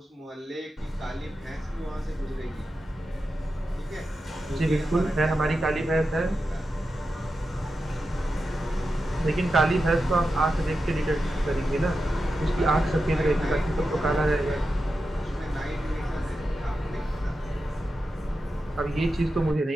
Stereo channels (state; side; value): normal; both; correlation 0.90